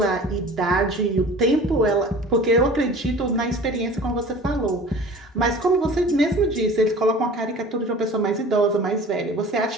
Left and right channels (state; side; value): normal; both; correlation 0.42